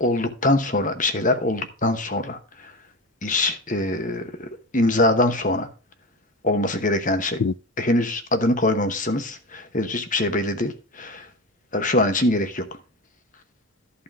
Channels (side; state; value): both; normal; correlation 0.24